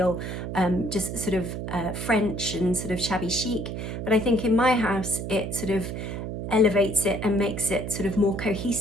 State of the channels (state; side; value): noise; right; hum, 5 dB below the sound